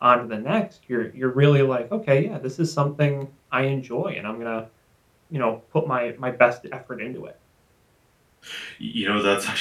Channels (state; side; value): identical; both; correlation 1.00